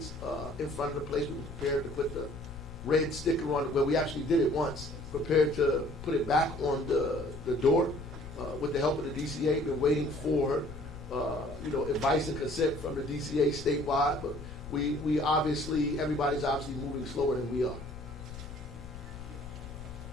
in front of the place. We were prepared to put the red sticker on it. Well, we actually did it once. Prepared to put it back on the door with the help of the DCA. Been waiting for advice and consent from the DCA statewide, but we obviously, everybody's obviously moving slower than we are.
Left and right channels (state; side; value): noise; left; rumble, 14 dB below the sound